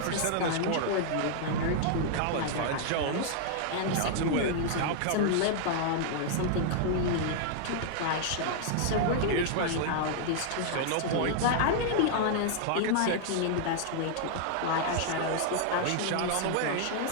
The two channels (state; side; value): different; both; correlation -0.01